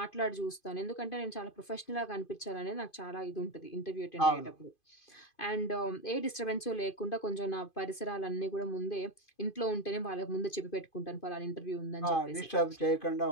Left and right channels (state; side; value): late; right; 2.5 ms